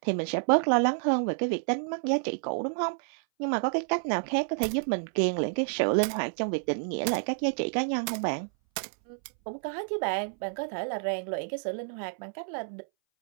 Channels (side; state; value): left; silent; 58 dB below the other